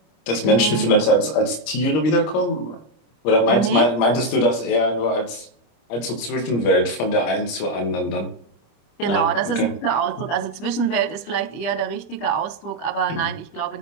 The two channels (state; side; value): late; right; 26 ms